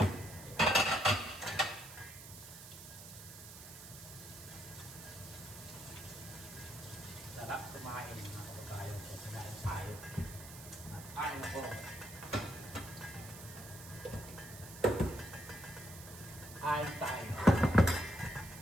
Sarap kumain mga kababayan ko. Kumain tayo. At kain ako. Kain tayo.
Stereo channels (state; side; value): noise; right; hiss, 14 dB below the sound